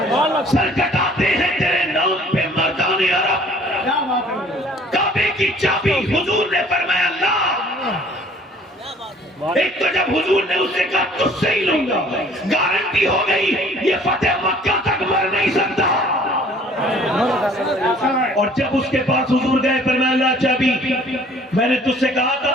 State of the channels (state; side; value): normal; both; correlation 0.54